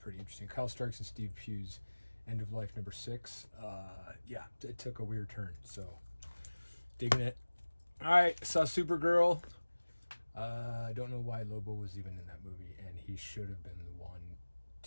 interesting. Kyle Starks and Steve Pugh's End of Life number 6. Yeah, it took a weird turn, so digging it. All right, saw Supergirl. I don't know why Lobo was even in that movie, and he should have been the one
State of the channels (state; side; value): inverted; both; correlation -1.00